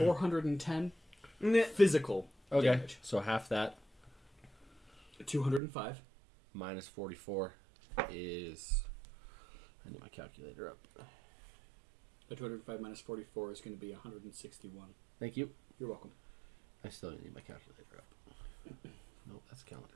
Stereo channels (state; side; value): drops out; left; at 5.6 s